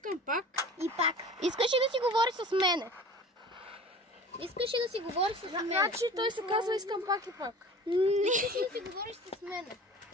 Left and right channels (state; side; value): normal; both; correlation 0.41